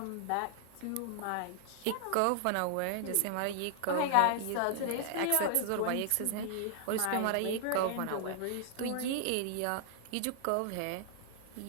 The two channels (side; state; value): both; different; correlation -0.01